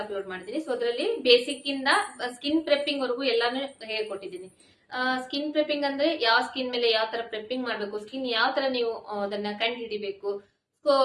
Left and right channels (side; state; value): both; identical; correlation 1.00